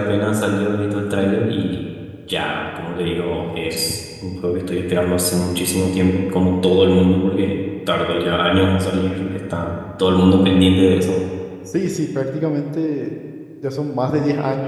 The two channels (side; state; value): both; identical; correlation 1.00